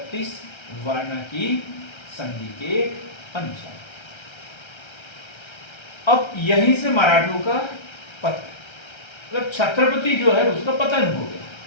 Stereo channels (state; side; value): late; right; 1.3 ms